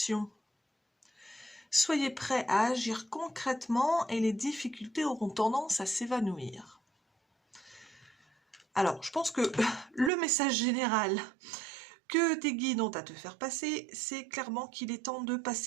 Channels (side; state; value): left; drops out; at 10.1 s